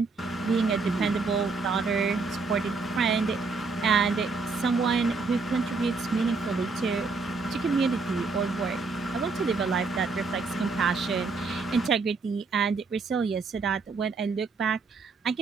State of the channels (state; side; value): quieter; left; 4.3 dB